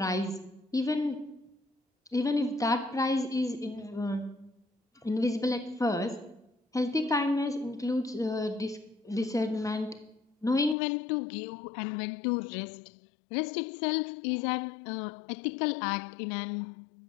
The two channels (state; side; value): drops out; right; at 10.8 s